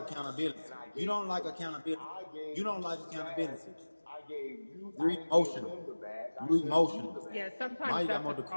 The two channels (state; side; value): inverted; both; correlation -1.00